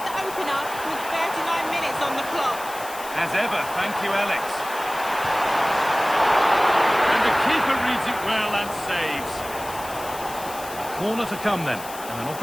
the opener with 39 minutes on the clock. As ever, thank you, Alex. And the keeper reads it well and saves. Corner to come then. And an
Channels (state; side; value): noise; left; hiss, 14 dB below the sound